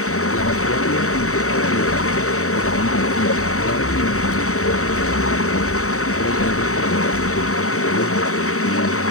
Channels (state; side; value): late; right; 0.64 ms